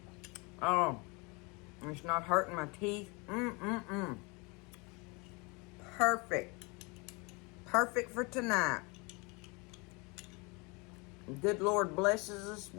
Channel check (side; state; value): right; quieter; 28.8 dB